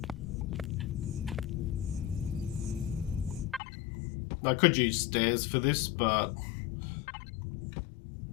I could use stairs for this, but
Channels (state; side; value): drops out; right; at 3.6 s